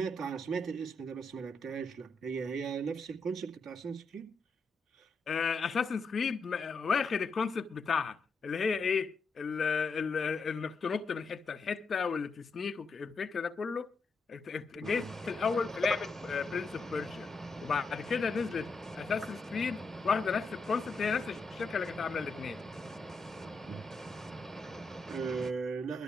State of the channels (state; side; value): quieter; right; 3.5 dB